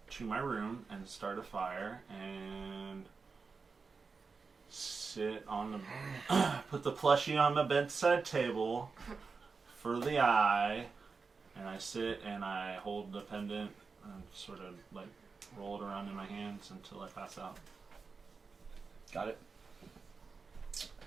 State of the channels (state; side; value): quieter; left; 4.7 dB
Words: to my room and start a fire and sit on the put the plushie on my bedside table for the eye, and I sit and I hold the pendant and sort of like roll it around in my hands until I pass out. Got it.